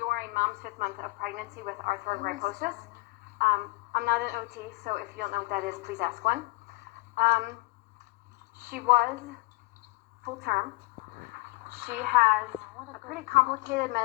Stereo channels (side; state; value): right; quieter; 23.4 dB